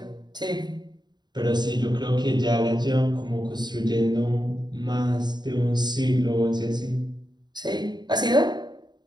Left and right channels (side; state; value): left; late; 0.21 ms